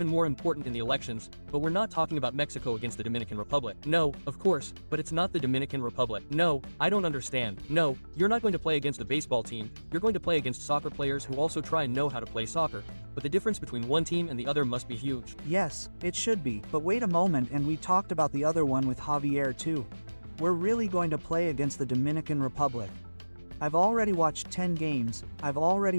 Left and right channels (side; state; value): both; inverted; correlation -1.00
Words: more important in the elections, but we're not talking about Mexico against the Dominican Republic. No, of course, but it's not the Dominican Republic. No, I don't understand. No, you're not going to play against a baseball team, you're going to play against soccer players who also try and know how to play soccer. But the difference between one team and the other must be huge. Yes, it should be, but wait a moment, and we talked about the other one with Javier too. We're really going to play against the Dominican Republic. I've already watched 10 games, I've